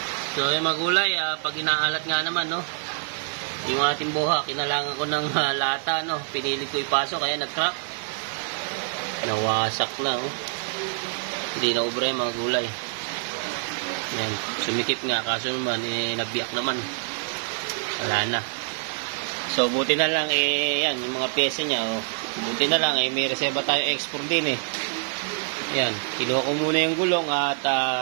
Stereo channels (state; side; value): silent; left; digital silence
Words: So yung magulay, pag inaalat nga naman, no, yung ating boha, kinalangan ko ng lata, no, pinilit ko ipasok, kaya nag-crack. Nawasak na, oh. Hindi na ubre mga gulay. Yan, sumikip nga, kaso naman, nabiyak naman. Wala na. So, buti na lang, yan, yung mga pyesa niya, oh. Buti na lang, may reserva tayo export din, Yan, kinuha ko muna yung gulong at